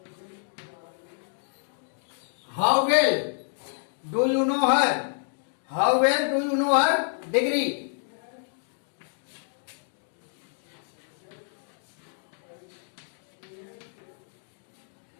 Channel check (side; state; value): right; silent; digital silence